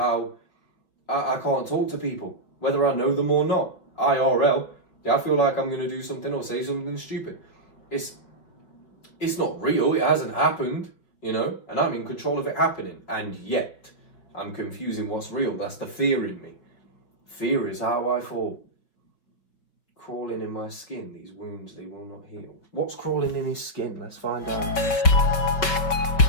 I can't talk to people, whether I know them or not. IRL, I feel like I'm going to do something or say something stupid. It's not real, it hasn't happened, you know, and I'm in control of it happening. And yet, I'm confusing what's real. That's the fear in me. Fear is how I fall. Crawling in my skin, these wounds, they will not heal. What's crawling in his skin? Let's find out.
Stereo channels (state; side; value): late; right; 5.3 ms